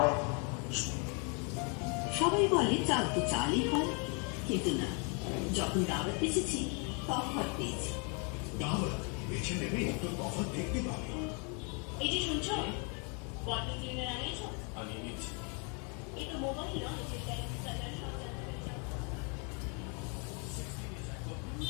সবাই বলে চাল তো চালই হয়, কিন্তু না, যখন দাওয়াত পেয়েছি তফাৎ পেয়েছি। দাওয়াত বেছে নেবে তো তফাৎ দেখতে পাবে। এই যে শুনছো, ওয়াটার ক্লিনার আনিয়েছো? আমি নিচ্ছি। এই তো মোবাইল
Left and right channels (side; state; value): right; quieter; 35.9 dB